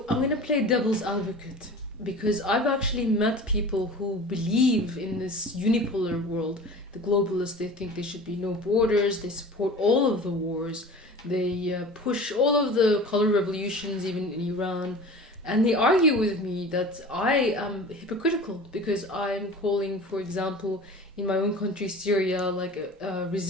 I'm going to play devil's advocate. because I've actually met people who believe in this unipolar world. The globalists, they think there should be no borders, they support all of the wars, they push all of the color revolutions, even in Iran. And they argue with me that I am hypocritical because I'm calling, for example, in my own country, Syria, like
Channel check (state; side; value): normal; both; correlation 0.38